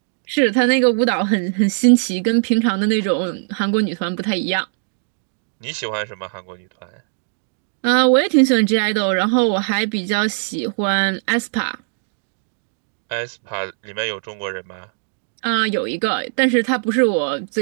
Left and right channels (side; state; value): left; silent; digital silence